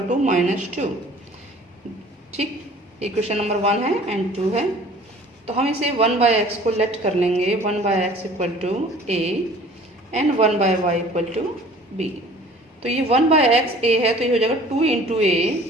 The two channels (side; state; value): both; normal; correlation 0.50